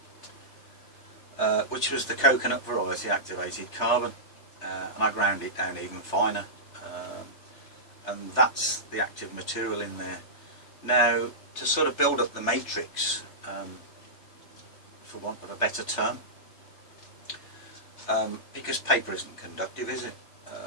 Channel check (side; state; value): right; late; 3.3 ms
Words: which was the coconut variety activated carbon, and I ground it down even finer, and that's the active material in there. Now, to sort of build up the matrix, for want of a better term, because paper isn't conductive, is it?